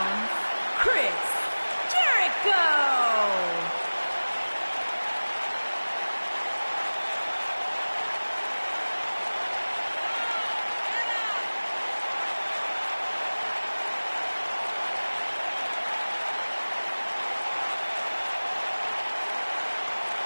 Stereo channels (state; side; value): inverted; both; correlation -1.00